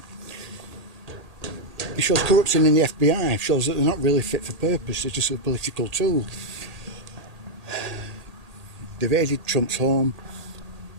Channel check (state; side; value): late; left; 1.8 ms